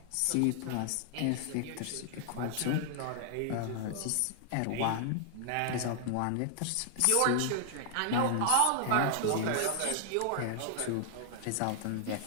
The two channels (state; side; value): different; both; correlation 0.00